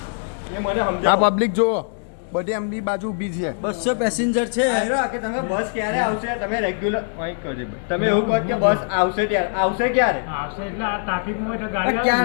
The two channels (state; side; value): silent; right; 64 dB below the other